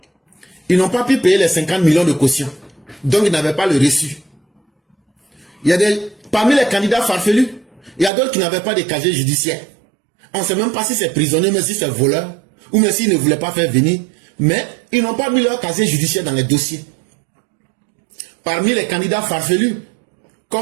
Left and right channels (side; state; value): left; drops out; at 8.1 s